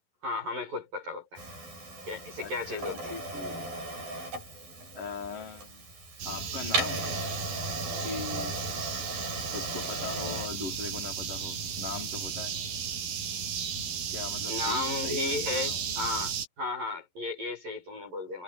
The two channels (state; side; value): late; left; 12 ms